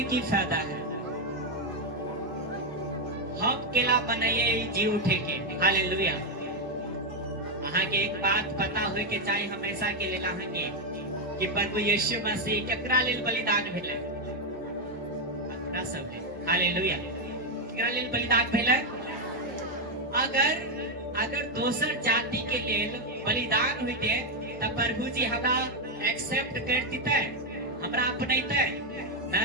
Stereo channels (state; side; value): noise; right; hum, 27 dB below the sound